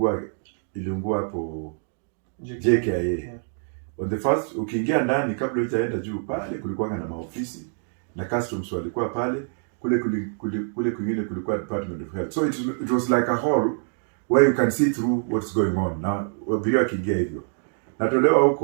iliungua hapo JKIA. Yeah. On the first, ukiingia ndani kabla hujaenda juu pale kulikuwa na maofisi na customs walikuwa pale, kule kwingine kulikuwa Department of Health. So it was like a hall where you can see through what's going on. Na wabiria kiingia hivyo. Natolewa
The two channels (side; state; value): left; silent; 62 dB below the other